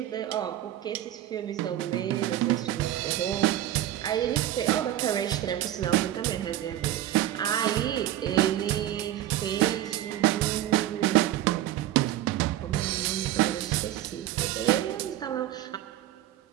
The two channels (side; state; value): left; quieter; 13.1 dB